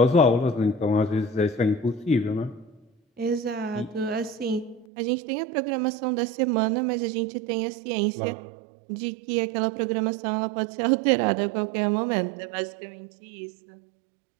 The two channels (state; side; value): drops out; left; at 4.9 s